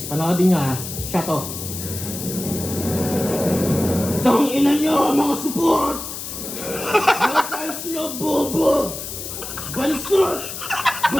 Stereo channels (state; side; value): noise; left; hiss, 8 dB below the sound